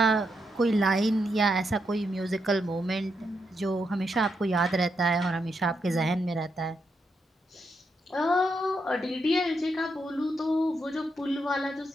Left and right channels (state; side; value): normal; both; correlation 0.81